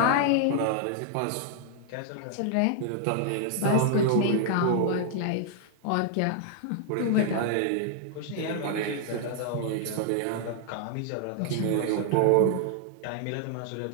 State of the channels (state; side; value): different; both; correlation 0.00